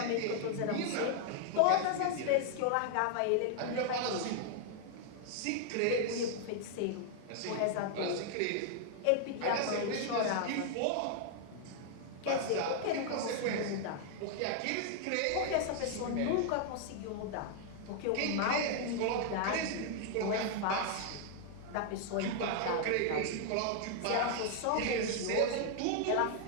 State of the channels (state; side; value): different; both; correlation 0.00